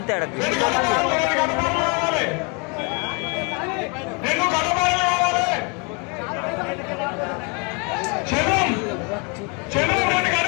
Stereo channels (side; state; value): right; quieter; 32.8 dB